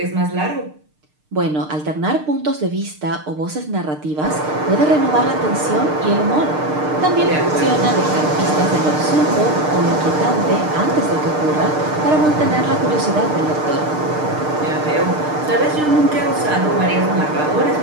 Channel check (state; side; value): late; left; 6.6 ms